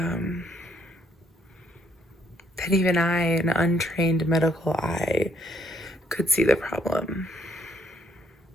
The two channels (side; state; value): both; normal; correlation 0.68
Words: that even I, an untrained medical eye, could see the problem.